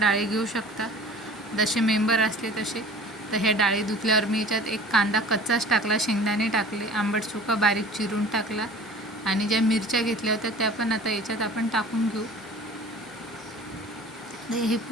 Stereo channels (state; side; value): normal; both; correlation 0.43